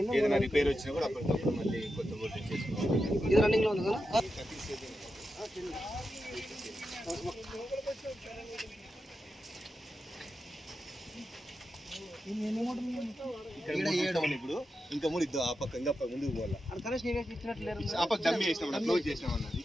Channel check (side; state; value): both; normal; correlation 0.89